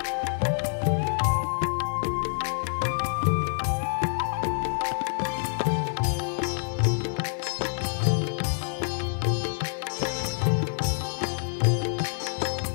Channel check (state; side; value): silent; right; digital silence